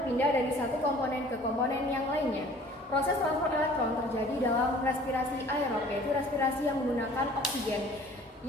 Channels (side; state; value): both; normal; correlation 0.51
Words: dari satu komponen ke komponen yang lainnya. Proses transfer elektron terjadi dalam respirasi aerob, yaitu respirasi yang menggunakan oksigen,